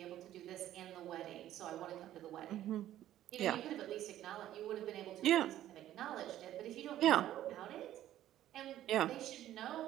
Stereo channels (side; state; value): left; quieter; 12.8 dB